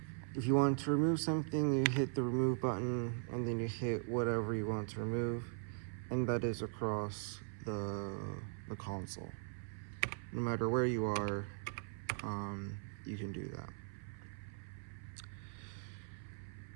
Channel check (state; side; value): silent; left; 51 dB below the other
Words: If you want to remove something, you hit the remove button and then you hit whatever you want to remove, and that is across the console. No matter where you are, you can do that.